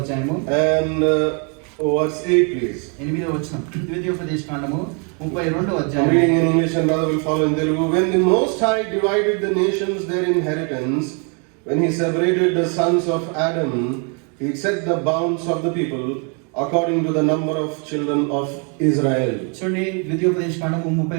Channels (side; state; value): left; quieter; 36.9 dB